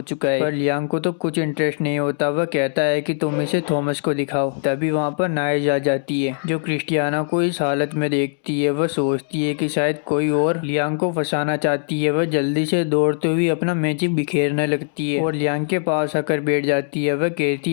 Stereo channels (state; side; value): silent; right; digital silence